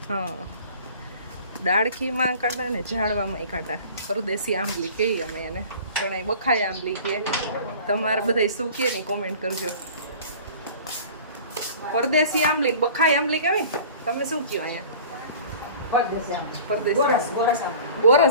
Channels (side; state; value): both; inverted; correlation -0.44